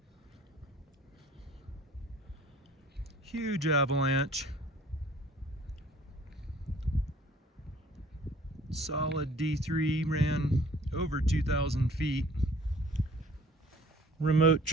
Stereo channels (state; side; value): normal; both; correlation 0.53